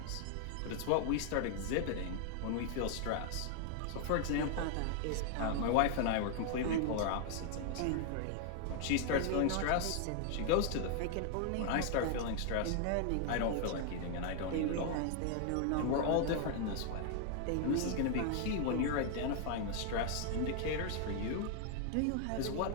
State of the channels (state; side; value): different; both; correlation 0.00